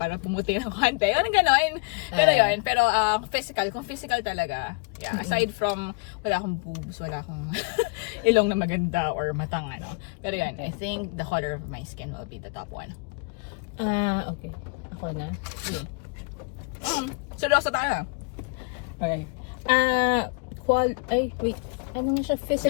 pumuti ng konti. Yun, gano'n. Pero yun, pero physical, kung physical talaga, yeah, aside from, wala akong boobs, wala akong ilong na maganda or matang ano. Pero yun, I think the color of my skin will be the top one. Okay. Ako na. Seryoso tayo. Alright. Wait. Ano nga siya?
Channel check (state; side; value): quieter; right; 30.9 dB